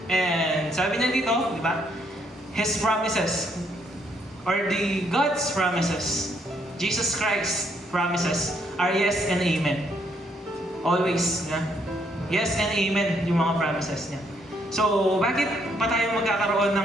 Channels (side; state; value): both; normal; correlation 0.71